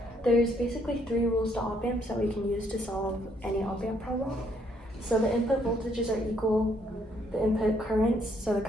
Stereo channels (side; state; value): both; normal; correlation 0.70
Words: There's basically 3 rules to op amps that we can use to solve any op amp problem. So the input voltages are equal, the input currents, so the